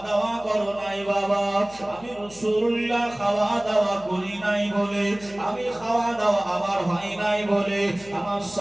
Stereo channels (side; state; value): left; noise; hum, 22 dB below the sound